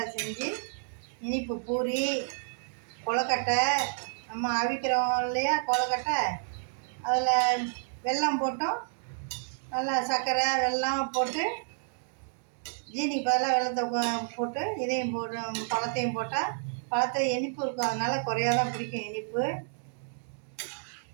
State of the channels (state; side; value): silent; left; digital silence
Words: செஞ்சு, இனிப்பு பூரி, கொழுக்கட்டை, நம்ம அவிக்கிறோம் இல்லையா கொழுக்கட்டை, அதில் வெல்லம் போட்டோம், நல்லா சர்க்கரை வெல்லம் போட்டு, ஜீனிக்கு பதிலாக வெல்லத்தை போட்டு இதையும் போட்டு பழத்தையும் போட்டால் பழத்தை இனிப்பு இருக்கும், அதனால் குறையாதான் பிடிக்கும் இனிப்பு.